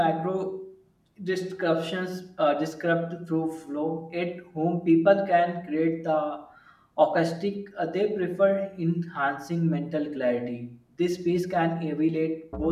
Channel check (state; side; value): identical; both; correlation 1.00